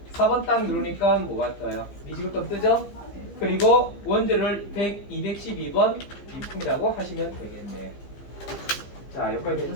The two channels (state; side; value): late; right; 15 ms